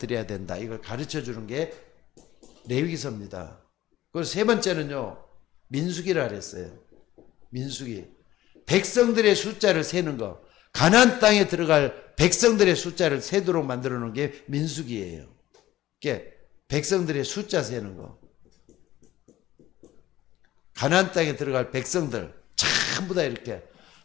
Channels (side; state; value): right; quieter; 14.7 dB